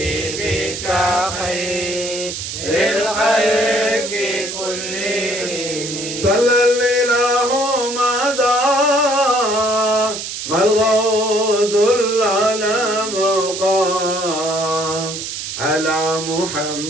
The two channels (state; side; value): noise; right; hiss, 6 dB below the sound